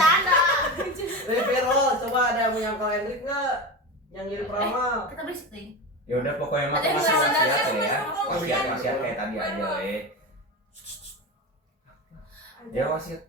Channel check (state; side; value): normal; both; correlation 0.23